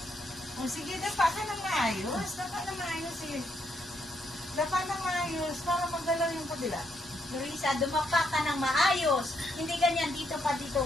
O sige, dapa ka na maayos. Dapa na maayos eh. Dapa na maayos para magalaw yung kabila. Marisa, dumapa ka ng maayos. Hindi ganyan dito pa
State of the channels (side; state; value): both; normal; correlation 0.76